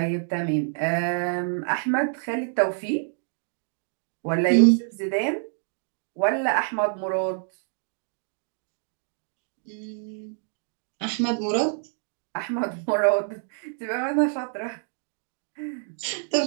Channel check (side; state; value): left; silent; digital silence